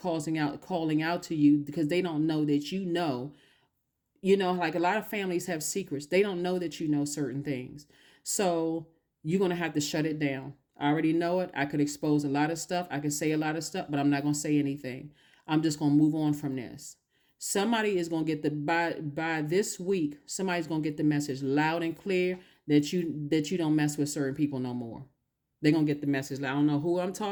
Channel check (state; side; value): identical; both; correlation 1.00